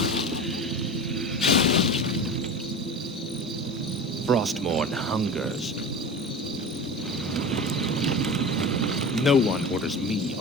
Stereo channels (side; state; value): both; normal; correlation 0.31